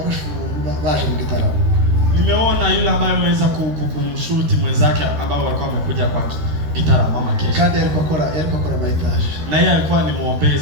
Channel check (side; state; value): left; late; 13 ms